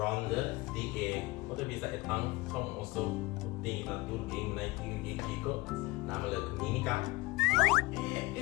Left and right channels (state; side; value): quieter; right; 21.8 dB